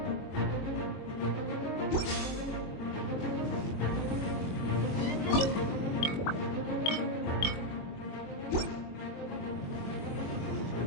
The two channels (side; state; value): right; late; 22 ms